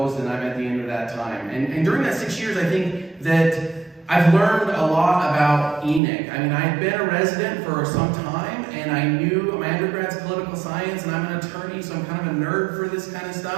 and I'm at the end of that time. And during that 6 years, I think that I've learned a lot about Enoch. I mean, I've been a resident for some time, and I knew my undergrad's political science, and I'm an attorney, so I'm kind of a nerd for this kind of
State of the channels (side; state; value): left; drops out; at 6.0 s